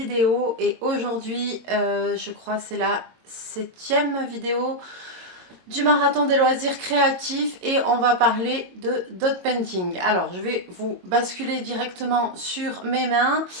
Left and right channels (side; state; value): left; late; 22 ms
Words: et aujourd'hui, je crois c'est la 7e vidéo du marathon des loisirs créatifs et on va parler de dot painting. Alors je vais vous basculer directement sur mes mains.